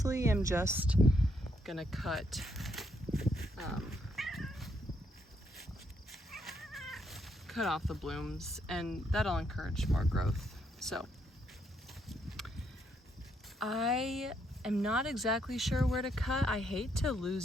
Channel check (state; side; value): normal; both; correlation 0.75